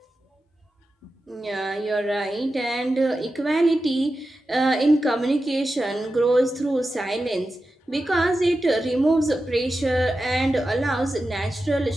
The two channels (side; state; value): both; normal; correlation 0.92